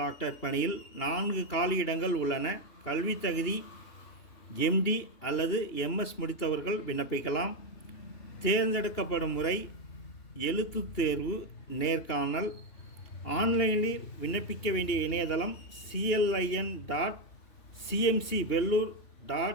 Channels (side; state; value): right; late; 2.9 ms